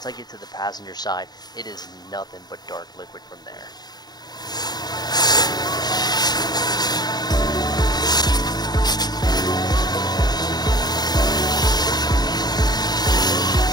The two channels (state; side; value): late; right; 0.20 ms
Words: I get to the passenger side, it is nothing but dark liquid from there.